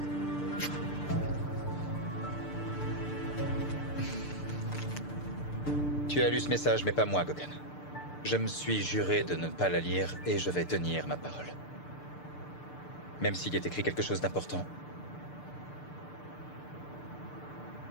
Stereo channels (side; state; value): right; late; 6.7 ms